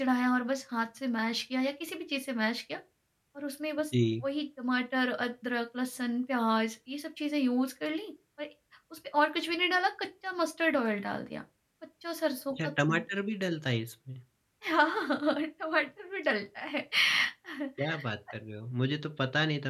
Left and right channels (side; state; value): both; identical; correlation 1.00